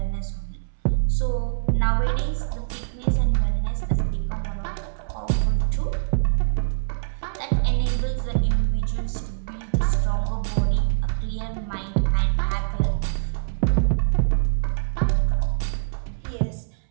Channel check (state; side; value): silent; left; 63 dB below the other